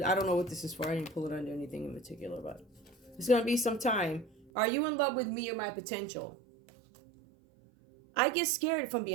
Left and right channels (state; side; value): drops out; left; at 4.5 s